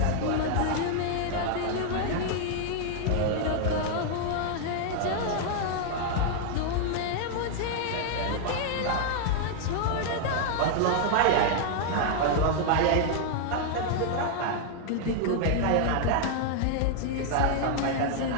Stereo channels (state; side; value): different; both; correlation 0.00